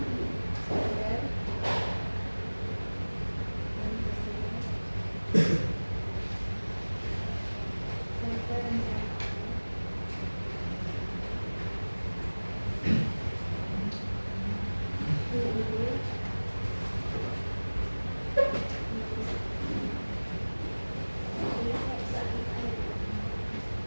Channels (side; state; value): both; inverted; correlation -1.00